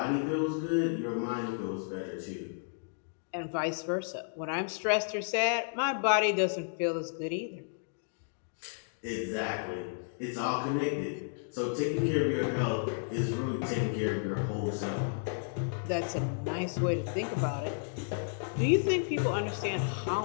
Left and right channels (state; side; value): silent; right; digital silence